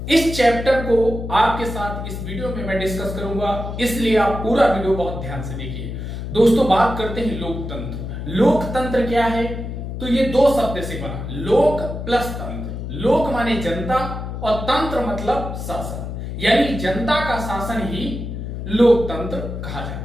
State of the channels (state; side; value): noise; left; hum, 6 dB below the sound